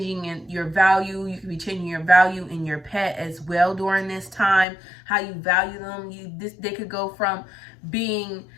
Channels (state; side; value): drops out; right; at 4.7 s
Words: in your value. You could be changing your value in your pet as well during this time. How you value them. They could go from being